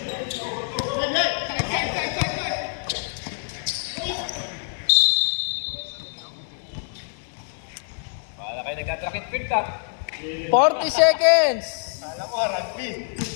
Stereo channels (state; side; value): silent; right; 62 dB below the other